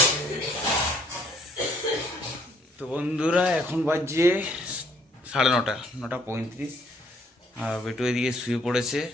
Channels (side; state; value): both; normal; correlation 0.63